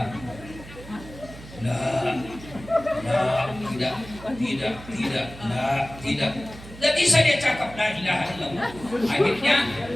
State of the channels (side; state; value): right; noise; hum, 16 dB below the sound